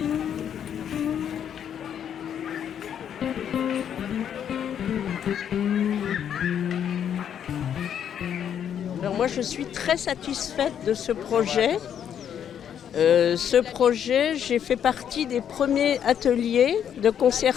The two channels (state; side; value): quieter; right; 9.0 dB